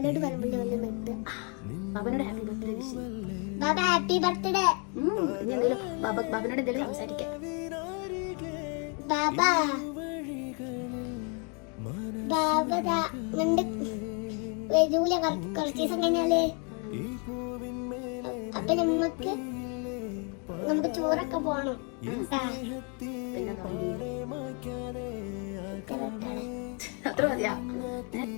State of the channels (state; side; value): quieter; right; 36.5 dB